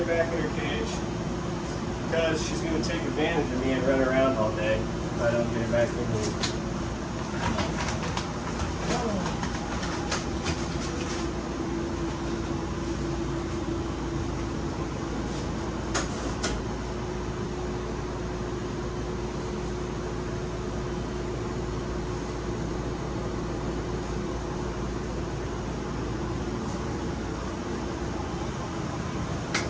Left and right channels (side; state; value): both; identical; correlation 1.00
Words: back in her cage. Because she's going to take advantage of me and run around all day if I don't get her back in here.